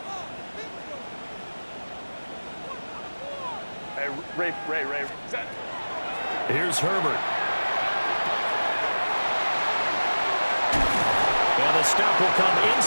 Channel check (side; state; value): both; inverted; correlation -1.00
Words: Hey, Ray. Here's Herbert. And the stop will come